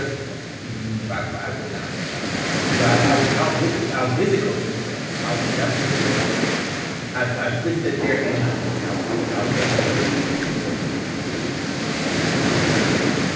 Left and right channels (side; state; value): both; identical; correlation 1.00